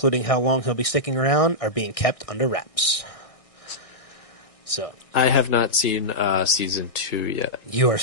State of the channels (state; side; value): late; right; 1.6 ms